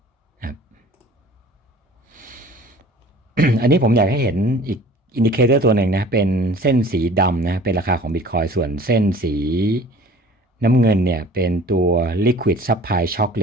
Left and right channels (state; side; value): normal; both; correlation 0.47